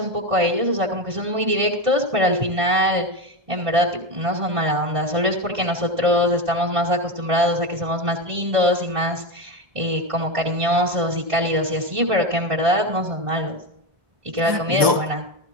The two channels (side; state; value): left; late; 1.5 ms